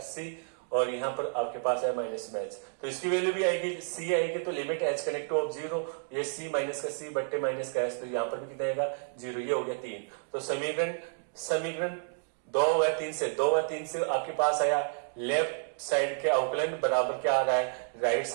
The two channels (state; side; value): silent; left; digital silence